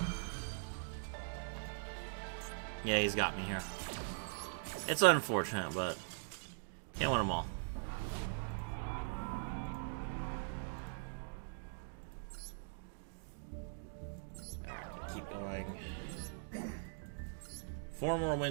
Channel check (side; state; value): left; silent; digital silence